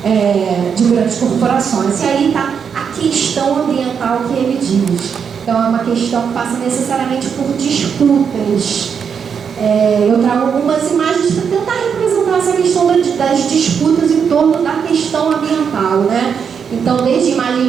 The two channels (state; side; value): quieter; left; 6.9 dB